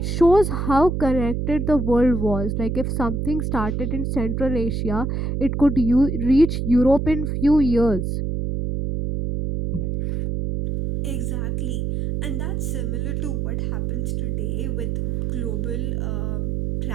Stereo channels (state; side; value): noise; right; hum, 1 dB below the sound